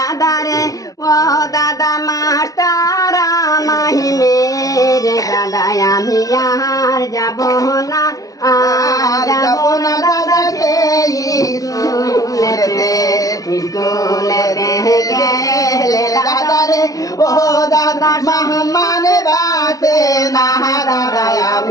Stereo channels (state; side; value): late; right; 0.17 ms